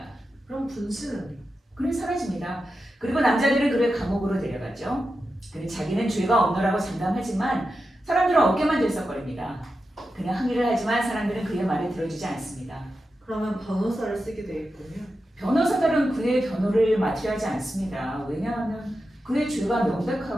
그럼 분신은? 그는 사라집니다. 그리고 남자들은 그를 감옥으로 데려가죠. 그는 자기는 죄가 없노라고 장담하지만 사람들은 어깨만 들썩거립니다. 그는 항의를 하지만 사람들은 그의 말을 들어주지 않습니다. 그러면 변호사를 쓰게 되겠군요. 변호사들은 그의 변호를 맡으려 하지 않습니다. 왜냐하면 그의 죄가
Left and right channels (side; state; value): both; normal; correlation 0.90